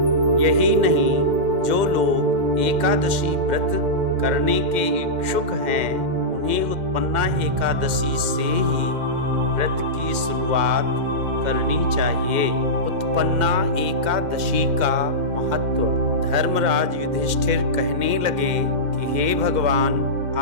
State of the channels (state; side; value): late; left; 2.1 ms